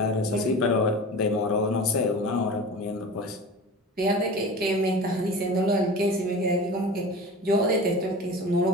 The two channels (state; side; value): normal; both; correlation 0.34